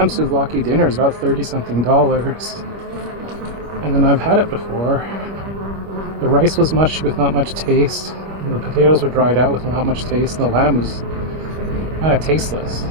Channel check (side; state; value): left; late; 25 ms